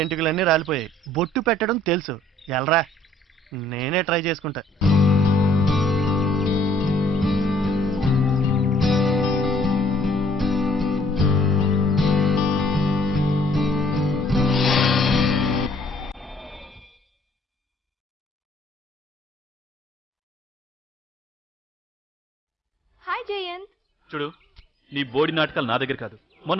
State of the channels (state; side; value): normal; both; correlation 0.62